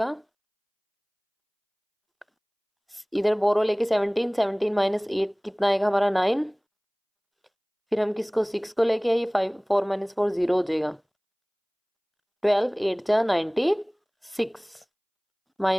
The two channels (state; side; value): identical; both; correlation 1.00